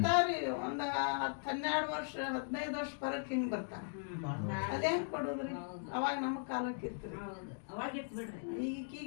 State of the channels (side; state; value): right; silent; digital silence